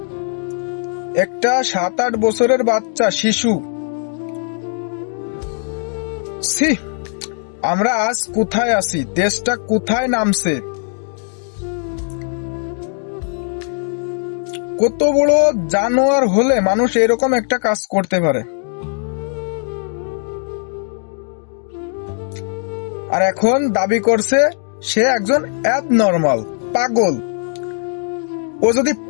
একটা 7-8 বছরের বাচ্চা শিশু। আমরা আজ কোথায় আছি? দেশটা কোথায় নামছে? কত বড় জানোয়ার হলে মানুষ এরকম একটা কাজ করতে পারে? আর এখন দাবি করছে সে একজন অ্যাবনর্মাল, পাগল। ও যদি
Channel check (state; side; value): silent; right; 62 dB below the other